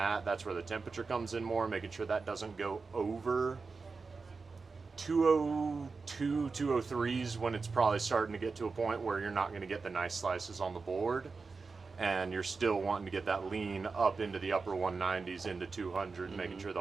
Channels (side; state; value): left; quieter; 4.4 dB